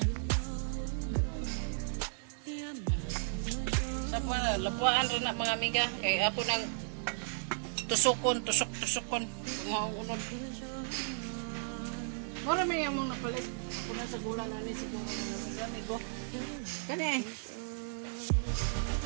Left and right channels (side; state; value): left; silent; digital silence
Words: Sa mga lapuan rin na mga amiga. Kaya ako nang tusukon. Mga unod. Mura may among napalit. Ako na sa gulang namin siguro. Amigo. Kani eh.